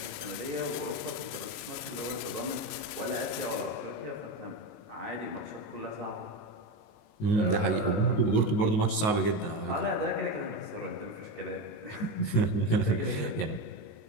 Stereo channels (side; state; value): right; late; 19 ms